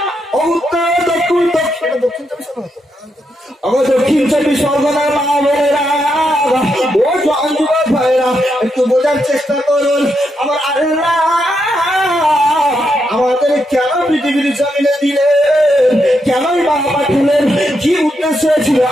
ও উত্তর দক্ষিণ দক্ষিণ 24 পরগনার মা বোনেরা ও জওয়ান যুবক ভাইরা একটু বোঝার চেষ্টা করুন। আমার আল্লাহ পৃথিবীর জমিনে দিলেন, কেনই বা পাঠালেন, কি উদ্দেশ্য ছিল?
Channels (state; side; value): normal; both; correlation 0.81